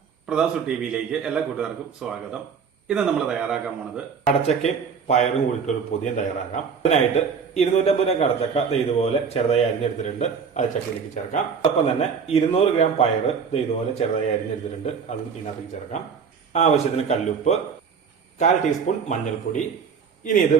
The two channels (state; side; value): quieter; left; 6.3 dB